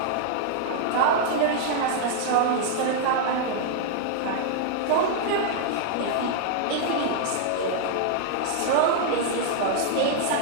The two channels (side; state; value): both; different; correlation 0.00